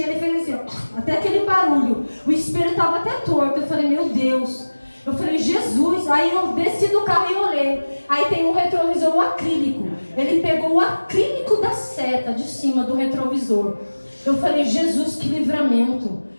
ele fez assim, ó, até aquele barulho. O espelho estava até torto. Eu falei, meu Deus. Eu falei, Jesus. Aí eu desci do carro e olhei. Aí tem um retrovisor, o acrílico. Ele pegou o acrílico da seta de cima do retrovisor. Eu falei, Jesus, que livramento.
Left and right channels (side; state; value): both; inverted; correlation -1.00